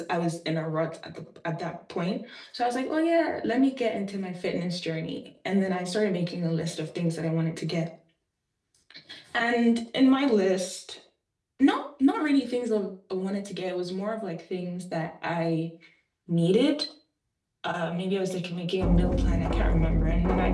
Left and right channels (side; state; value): both; identical; correlation 1.00